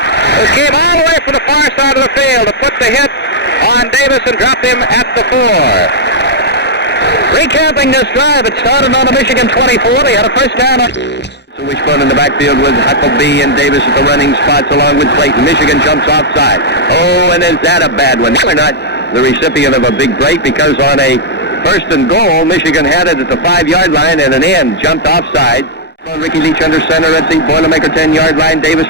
came all the way from the far side of the field to put the hit on Davis and dropped him at the 4. Recapping this drive, it started on the Michigan 24. They had a first down. So Wishbone in the backfield with Huckabee and Davis at the running spots along with Clayton. Michigan jumps offside. Oh, and is that a bad one? They're not the recipient of a big break because on a first and goal, Michigan had it at the 5-yard line, and an end jumped offside. Ricky Leach under center at the Boilermaker 10-yard line. Davis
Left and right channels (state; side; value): normal; both; correlation -0.06